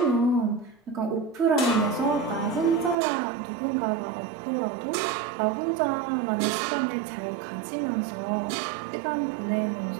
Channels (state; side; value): drops out; left; at 3.0 s